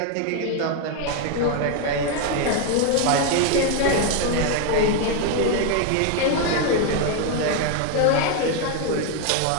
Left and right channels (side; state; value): both; different; correlation 0.01